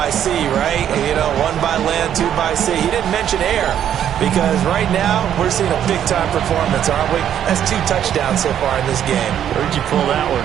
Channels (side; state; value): left; quieter; 10.0 dB